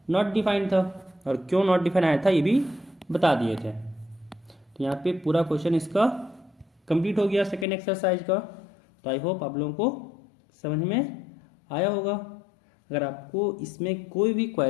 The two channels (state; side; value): drops out; right; at 7.7 s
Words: नॉट डिफाइंड था, और क्यों नॉट डिफाइंड आया था ये भी बता दिए थे। तो यहाँ पे पूरा क्वेश्चन इसका कंप्लीट हो गया सेकेंड एक्सरसाइज का। तो आई होप आप लोगों को समझ में आया होगा। अगर आपको इसमें कोई भी